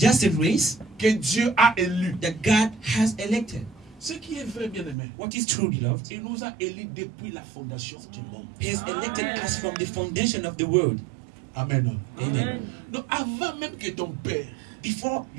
a race que Dieu a élue. that God has elected. Ce qui est vrai, bien aimé, What is true, beloved? il nous a élus depuis la fondation du monde. He has elected us from the foundation of the world. Amen. Amen. Donc avant même que ton père Before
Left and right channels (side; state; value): left; drops out; at 5.0 s